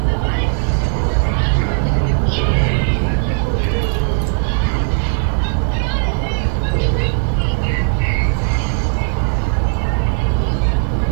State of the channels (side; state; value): left; silent; 67 dB below the other